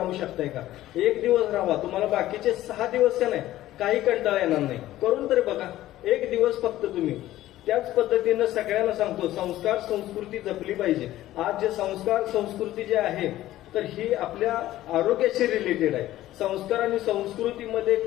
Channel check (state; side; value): quieter; right; 14.7 dB